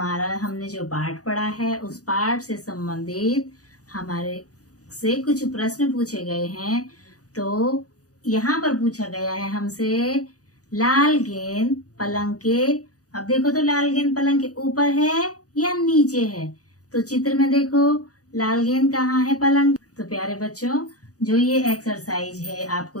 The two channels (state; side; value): late; right; 0.67 ms